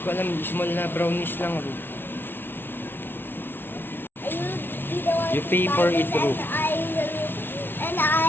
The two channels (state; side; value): late; right; 0.10 ms